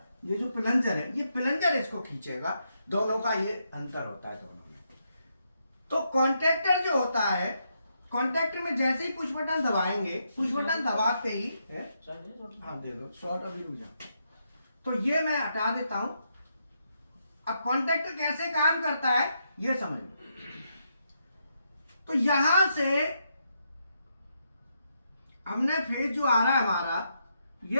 ये जो प्लंजर है, ये प्लंजर इसको खींचेगा। दोनों का ये अंतर होता है दोनों में। तो कॉन्टैक्टर जो होता है, कॉन्टैक्टर में जैसे ही पुश बटन दबाएंगे, पुश बटन दबाते ही हाँ दे दो, शॉर्ट अभी रुक जाओ। तो ये मैं हटा देता हूं। अब कॉन्टैक्टर कैसे काम करता है ये समझ लो। तो यहां से हमने फेज जो आ रहा है हमारा,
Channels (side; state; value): both; inverted; correlation -0.80